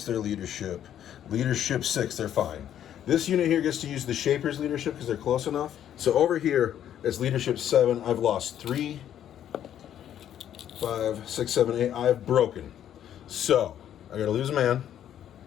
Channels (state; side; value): quieter; right; 10.5 dB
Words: their leadership? Leadership 6. They're fine. This unit here gets to use the Shaper's leadership because they're close enough. So over here, it's leadership 7. I've lost 3, 5, 6, 7, 8. I've broken. So I got to lose a man.